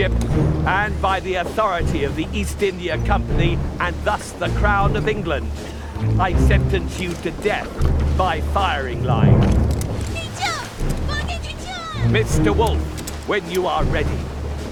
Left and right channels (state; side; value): identical; both; correlation 1.00